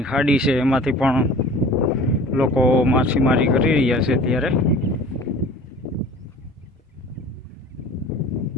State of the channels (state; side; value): normal; both; correlation 0.44